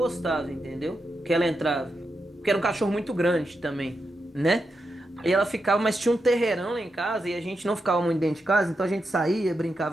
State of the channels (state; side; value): normal; both; correlation 0.86